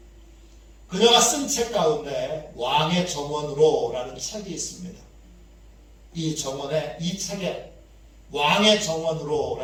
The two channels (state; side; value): identical; both; correlation 1.00